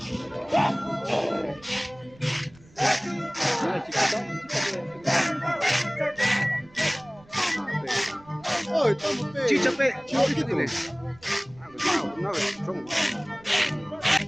¡Ay, estamos chicha, pe, chicha, chiquito! dile. Ah, pues, no, son.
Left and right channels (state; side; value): noise; right; rumble, 26 dB below the sound